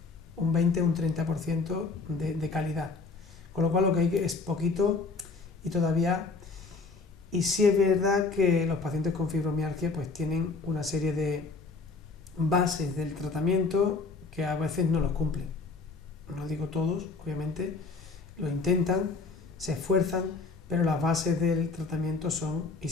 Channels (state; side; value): quieter; right; 4.1 dB